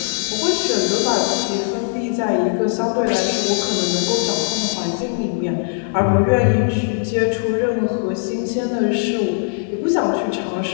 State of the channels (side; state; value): right; silent; 66 dB below the other